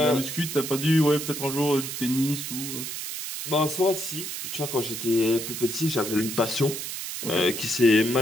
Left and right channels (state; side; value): noise; right; hiss, 6 dB below the sound